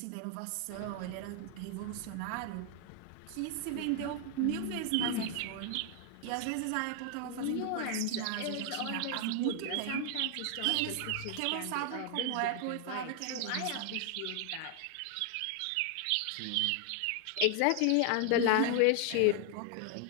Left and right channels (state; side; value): different; both; correlation 0.00